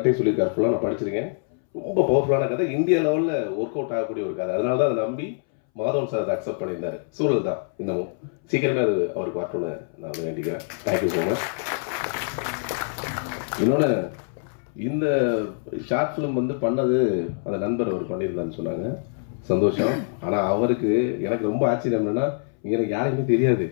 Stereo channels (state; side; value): silent; right; 62 dB below the other